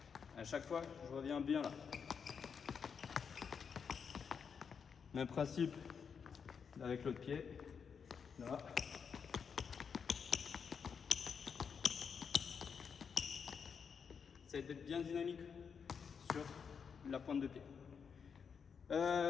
À chaque fois, je reviens bien là. Même principe avec l'autre pied, Là. Essayez d'être bien dynamique sur la pointe de pied.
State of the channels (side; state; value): right; quieter; 6.5 dB